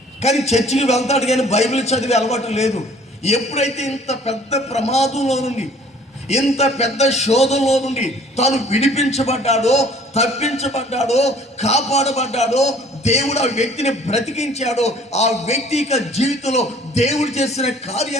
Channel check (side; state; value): both; normal; correlation 0.54